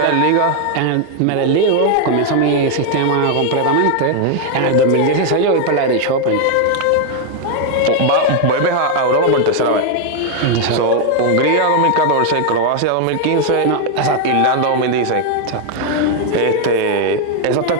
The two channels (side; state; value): both; different; correlation 0.00